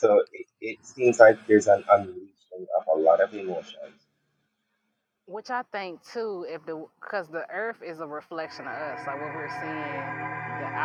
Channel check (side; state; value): both; identical; correlation 1.00